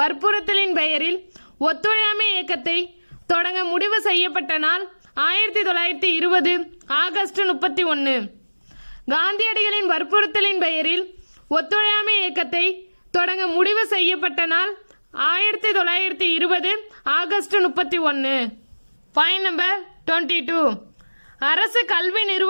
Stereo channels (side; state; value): both; inverted; correlation -1.00